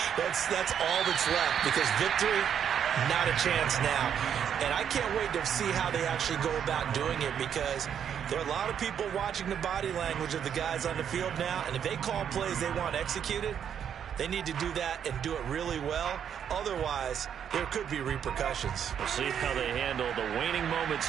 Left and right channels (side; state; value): left; quieter; 8.5 dB